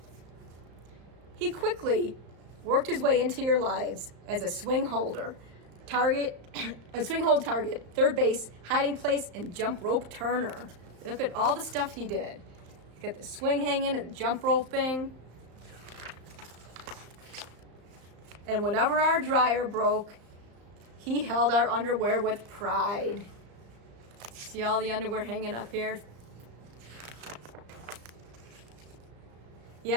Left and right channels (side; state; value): left; late; 35 ms